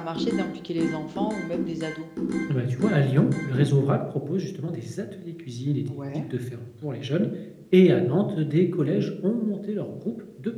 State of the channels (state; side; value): identical; both; correlation 1.00